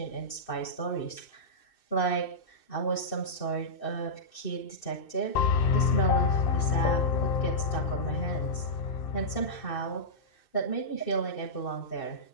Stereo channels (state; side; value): late; right; 2.6 ms